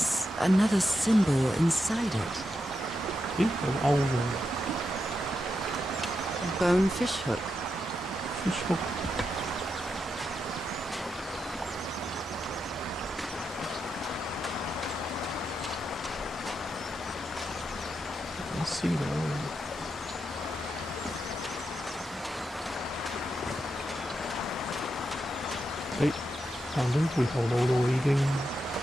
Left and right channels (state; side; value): normal; both; correlation 0.85